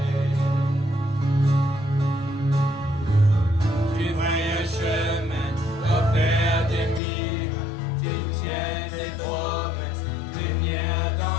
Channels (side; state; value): right; drops out; at 7.0 s